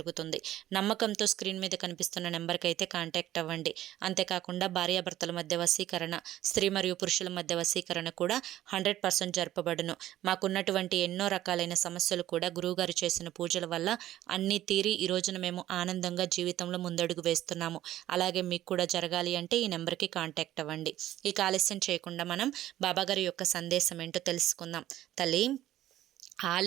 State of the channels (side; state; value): left; quieter; 13.6 dB